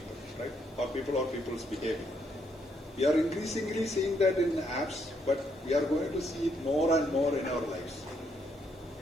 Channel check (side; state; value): both; normal; correlation 0.74